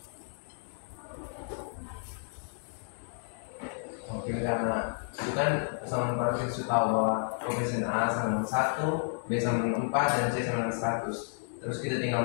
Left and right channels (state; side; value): silent; right; 57 dB below the other